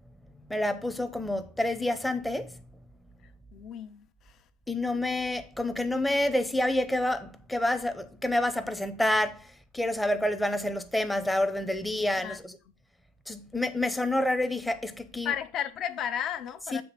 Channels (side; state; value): both; normal; correlation 0.88